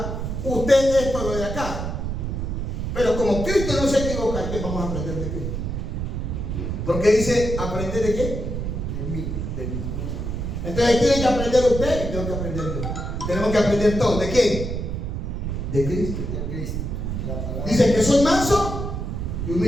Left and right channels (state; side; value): noise; right; rumble, 3 dB below the sound